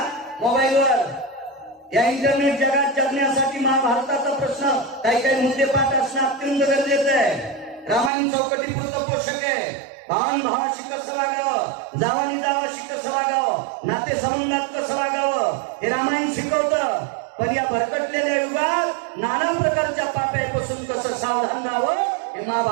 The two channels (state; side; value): drops out; left; at 8.1 s